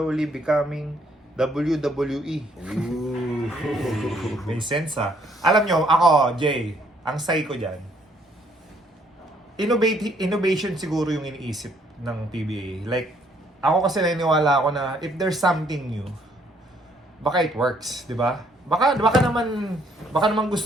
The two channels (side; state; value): both; normal; correlation 0.66